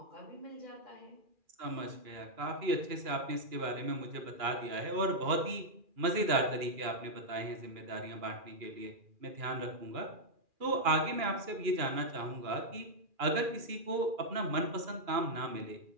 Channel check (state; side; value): late; left; 2.4 ms